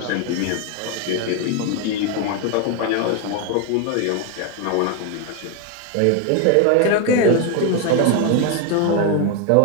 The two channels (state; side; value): different; both; correlation 0.01